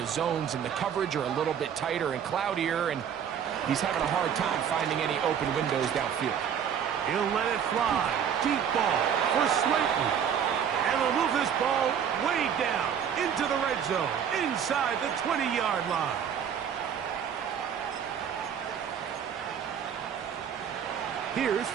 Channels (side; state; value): left; quieter; 8.3 dB